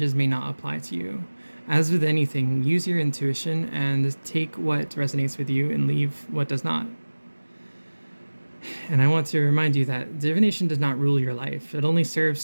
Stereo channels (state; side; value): inverted; both; correlation -1.00